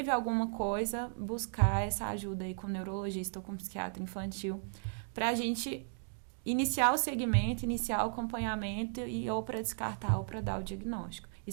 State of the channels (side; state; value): left; silent; digital silence